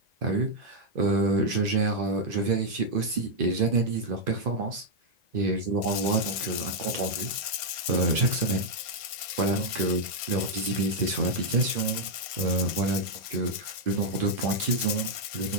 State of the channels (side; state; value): left; late; 1.5 ms